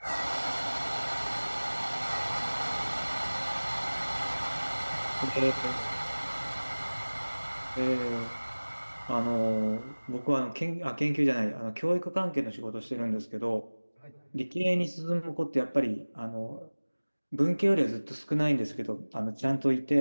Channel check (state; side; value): inverted; both; correlation -1.00